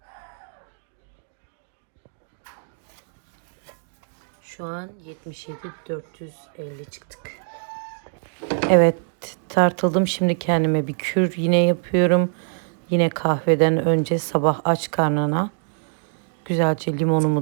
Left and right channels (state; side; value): silent; left; digital silence